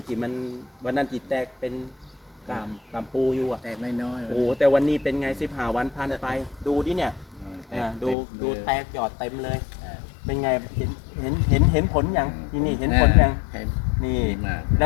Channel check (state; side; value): drops out; right; at 8.2 s